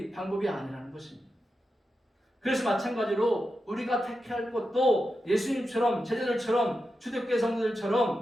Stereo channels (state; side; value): normal; both; correlation 0.89